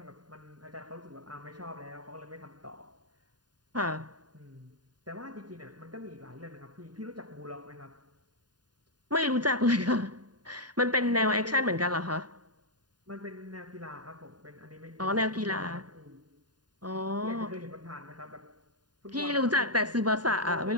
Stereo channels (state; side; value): late; left; 0.70 ms